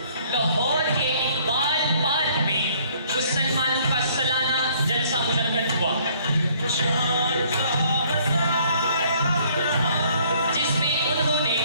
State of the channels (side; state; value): both; inverted; correlation -0.61